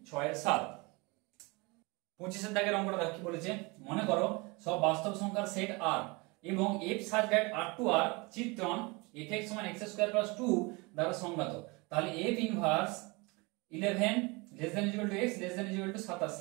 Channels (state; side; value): quieter; left; 26.8 dB